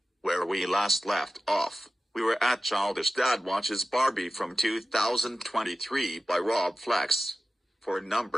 Where we last left off, we were at Childish Dad Watches Barbie from 2023 by Rob Flex. For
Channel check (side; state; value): both; normal; correlation 0.94